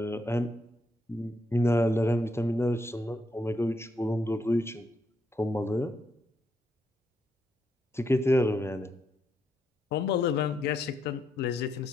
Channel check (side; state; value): both; normal; correlation 0.78